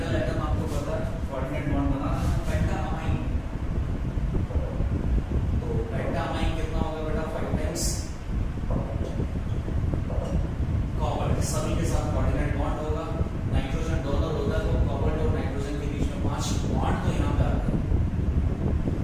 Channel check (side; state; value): both; identical; correlation 1.00